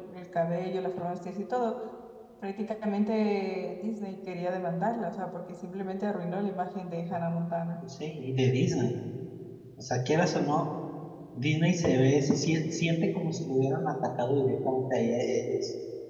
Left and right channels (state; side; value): identical; both; correlation 1.00